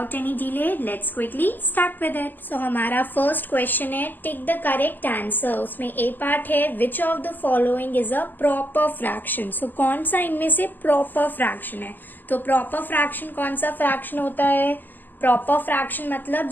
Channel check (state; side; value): late; right; 0.088 ms